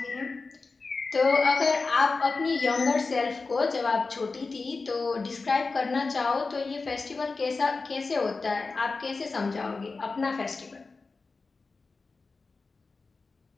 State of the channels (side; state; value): right; quieter; 4.0 dB